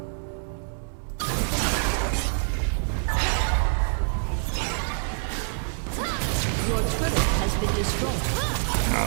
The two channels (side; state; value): left; silent; 61 dB below the other